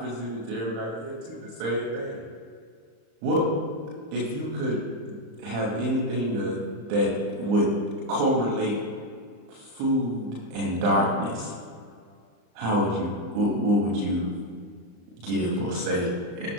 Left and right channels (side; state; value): left; late; 35 ms